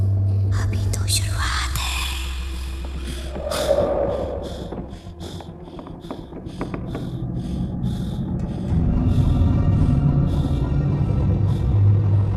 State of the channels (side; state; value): both; identical; correlation 1.00